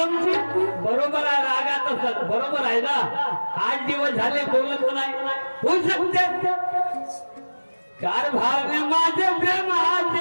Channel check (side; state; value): both; inverted; correlation -1.00